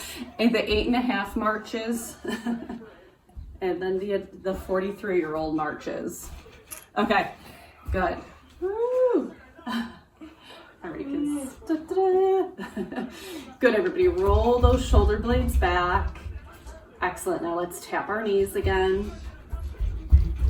And the 8.5 marches. And then the 43-year-old marches. Okay, good. Woo. All right, kids. Good, everybody. Roll those shoulder blades back. Excellent. Now let's tap our knees again.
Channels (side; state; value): both; identical; correlation 1.00